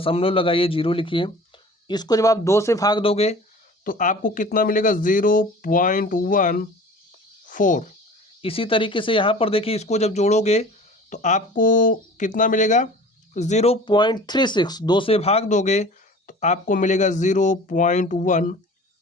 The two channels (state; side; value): normal; both; correlation 0.43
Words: लगाइए, 0 लिखिए। इसको जब आप 2 से भाग दोगे तो आपको कितना मिलेगा? 0.14। इसी तरीके से यहाँ पर देखिए, इसको जब जोड़ोगे तो आपको कितना मिलेगा? 0.36। 2 से भाग दोगे तो आपको मिलेगा